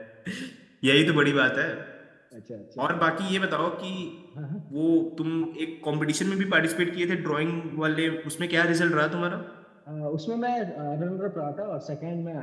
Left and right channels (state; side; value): identical; both; correlation 1.00